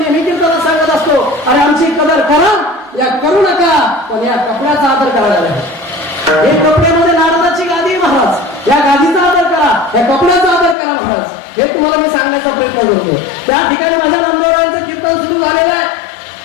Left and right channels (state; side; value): drops out; right; at 10.8 s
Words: मी कीर्तनात सांगत असतो अरे आमची कदर करा या करू नका, पण या कपड्याचा आदर करायला. हे कपड्यामध्ये नारदाची गादी महाराज, या गादीचा आदर करा, या कपड्याचा आदर करा महाराज. हे तुम्हाला मी सांगण्याचा प्रयत्न करतो. त्या ठिकाणी माझ्या नामदेवरायांचं कीर्तन सुरू झालेलं आहे.